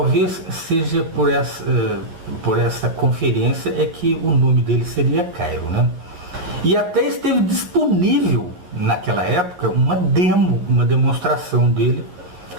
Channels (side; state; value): left; late; 11 ms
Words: seja por essa conferência é que o nome dele seria Cairo, né? E até esteve disponível naquela época uma demonstração dele